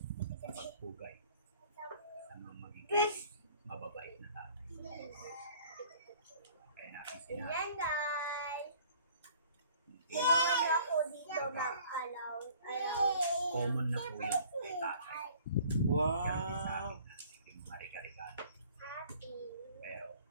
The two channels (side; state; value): both; inverted; correlation -0.53